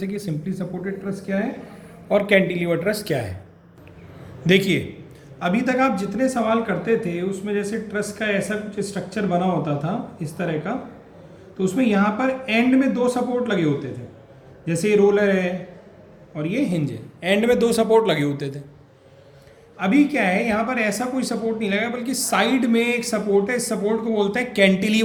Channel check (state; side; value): identical; both; correlation 1.00